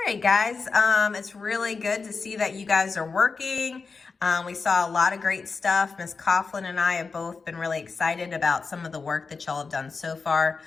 right, guys. It's really good to see that you guys are working. We saw a lot of great stuff. Ms. Coughlin and I have both been really excited about some of the work that y'all have done so far.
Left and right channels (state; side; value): quieter; right; 4.6 dB